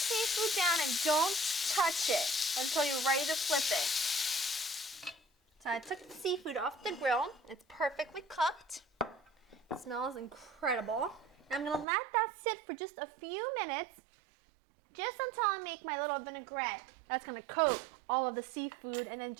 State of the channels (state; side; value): drops out; left; at 11.9 s